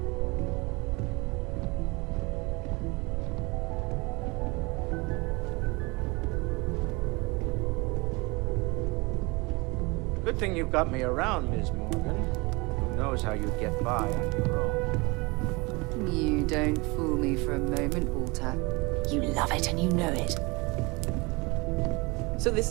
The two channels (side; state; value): left; quieter; 26.3 dB